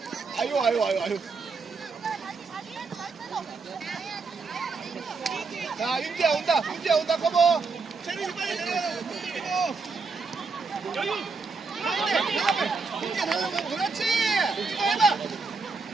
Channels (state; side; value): quieter; left; 4.4 dB